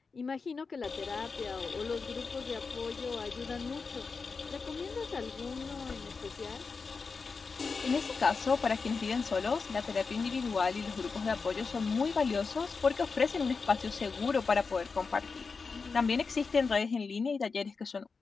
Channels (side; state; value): right; quieter; 4.8 dB